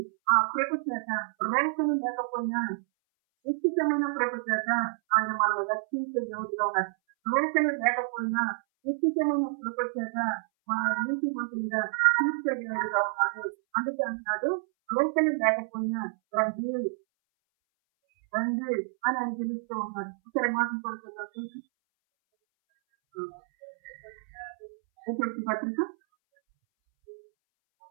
ఆ కృప చేత రోగం లేకపోయినా నిశ్చితమైన కృప చేత ఆయన మనల్ని రక్షించే యోగుగా ఉన్నారు. రోగం లేకపోయినా నిశ్చితమైన కృప చేత మన నీతి మంత్రులుగా తీర్చే యోగుగా ఉన్నారు. అందుకే అంటున్నాడు రోగం లేకపోయినా రండి అని ఆయన పిలుస్తూ ఉన్నారు. ఇక్కడ మాటలు పడుతుందా చూసి పత్రిక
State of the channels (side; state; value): left; silent; 59 dB below the other